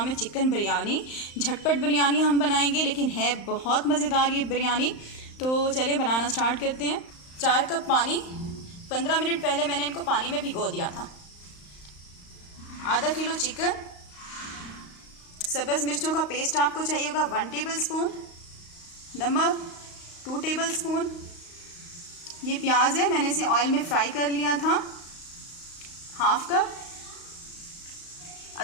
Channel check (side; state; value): right; late; 35 ms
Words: है चिकन बिरयानी। झटपट बिरयानी हम बनाएंगे, लेकिन है बहुत मज़ेदार ये बिरयानी। तो चलिए बनाना स्टार्ट करते हैं। 4 कप पानी, 15 मिनट पहले मैंने इनको पानी में भिगो दिया था। आधा किलो चिकन, सब्ज़ मिर्चों का पेस्ट आपको चाहिए होगा 1 टेबल स्पून, नमक 2 टेबल स्पून। ये प्याज है, मैंने इसे ऑयल में फ्राई कर लिया था, 1/2 कप।